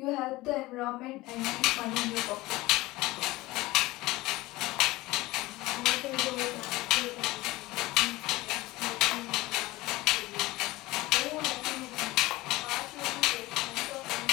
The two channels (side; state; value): right; quieter; 19.6 dB